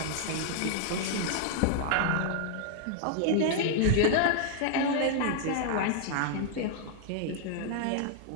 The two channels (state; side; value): different; both; correlation -0.01